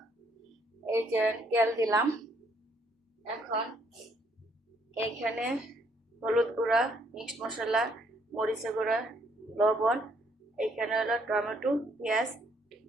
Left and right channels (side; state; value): both; normal; correlation 0.68